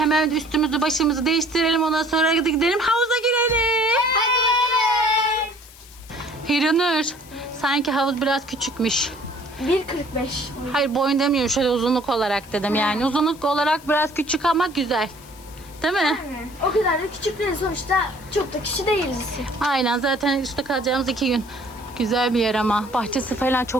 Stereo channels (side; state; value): left; noise; hiss, 22 dB below the sound